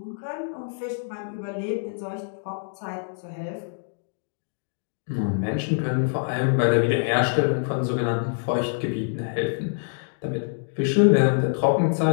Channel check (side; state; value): right; silent; digital silence